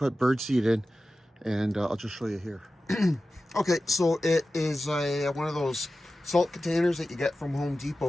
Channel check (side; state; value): both; normal; correlation 0.94